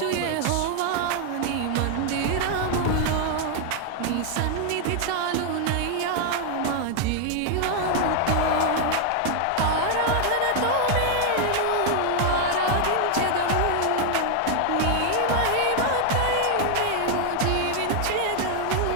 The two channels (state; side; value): different; both; correlation 0.00